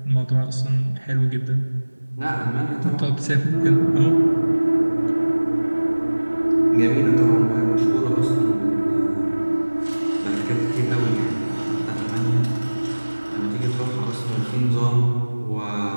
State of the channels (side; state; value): both; inverted; correlation -1.00